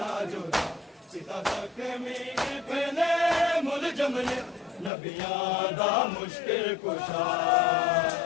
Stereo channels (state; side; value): drops out; right; at 4.9 s